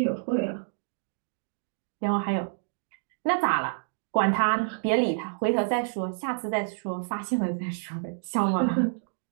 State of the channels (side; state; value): left; silent; digital silence